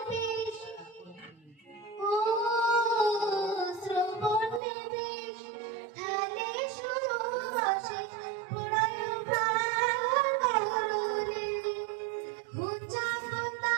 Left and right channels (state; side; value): drops out; left; at 4.6 s